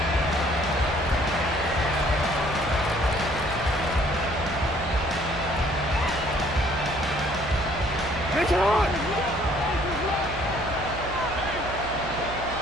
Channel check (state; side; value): noise; right; hum, 11 dB below the sound